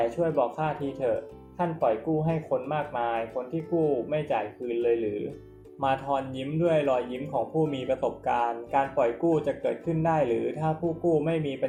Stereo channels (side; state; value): both; identical; correlation 1.00